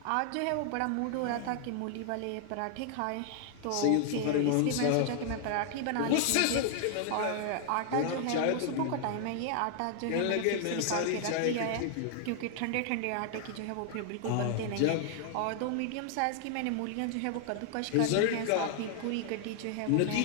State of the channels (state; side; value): different; both; correlation 0.00